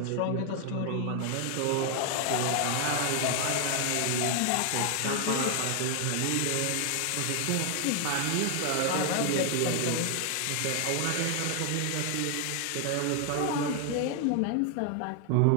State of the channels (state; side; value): different; both; correlation 0.00